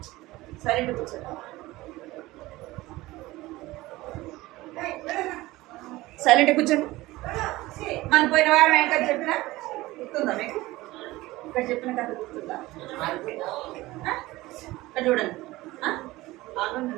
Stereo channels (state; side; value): quieter; left; 18.9 dB